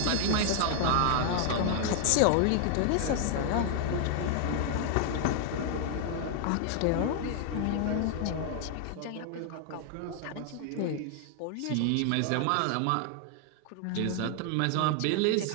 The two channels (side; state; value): both; different; correlation 0.00